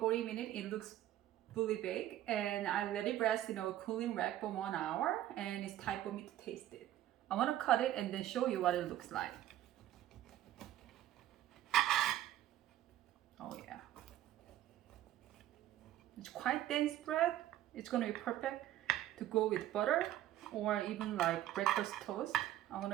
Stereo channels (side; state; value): left; quieter; 13.2 dB